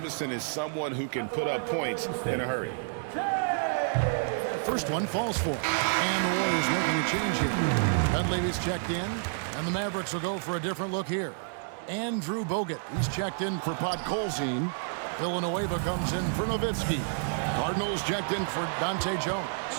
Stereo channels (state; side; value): silent; left; digital silence